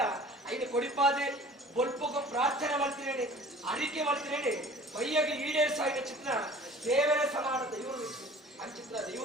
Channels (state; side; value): normal; both; correlation 0.46